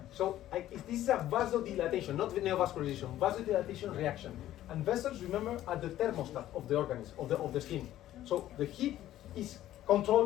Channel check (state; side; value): quieter; right; 13.3 dB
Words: So this is a vasodilatation, not neovascularization, vasodilatation reaction. And vessels, remember, are the thermostat of the organism, of the skin. So the heat is